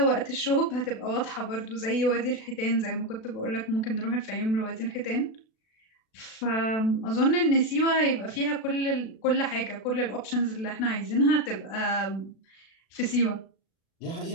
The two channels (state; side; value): late; right; 36 ms